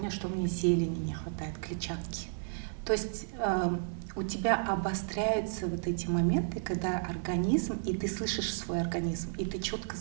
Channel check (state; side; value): silent; left; 56 dB below the other